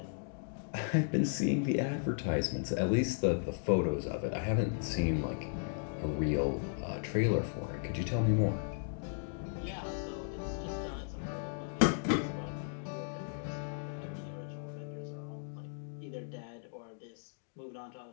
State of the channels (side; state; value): right; silent; digital silence